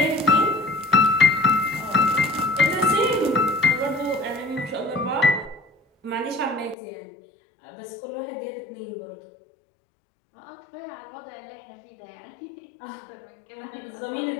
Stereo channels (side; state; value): right; drops out; at 6.8 s